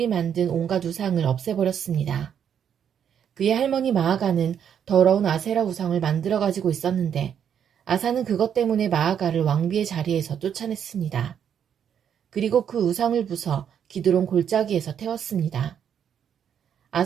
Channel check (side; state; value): left; quieter; 8.5 dB